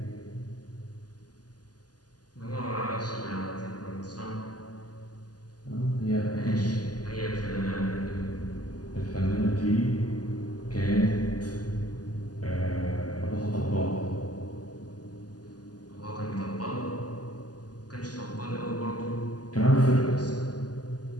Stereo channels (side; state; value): right; late; 0.68 ms